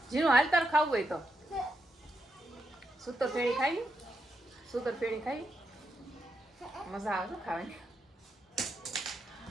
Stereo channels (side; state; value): both; normal; correlation 0.83